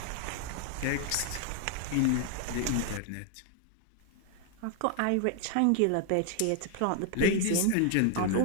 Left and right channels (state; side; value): different; both; correlation 0.00